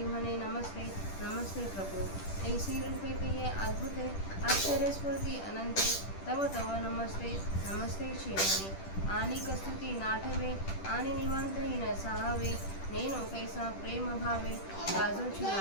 म्हणे नमस्ते नमस्ते प्रभो ऐसी रूपे ते अद्भुते आश्चर्यस्फूर्ती अनंते तव तव नमस्ते नमस्ते चिरणे आणि कस्तुती नाठवे आणि निवांतही न साहावे नेनो कैसा प्रेम भावे गाजोची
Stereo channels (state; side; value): late; right; 10 ms